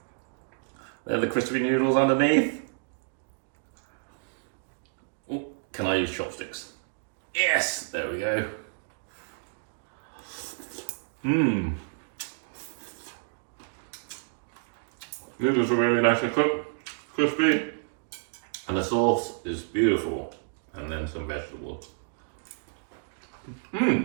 There are the crispy noodles underneath. Oh, can I use chopsticks? Yes, there we go. Noodles are really nicely cooked, crispy, and the sauce is beautiful. And then some vegetables.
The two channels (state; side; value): silent; left; digital silence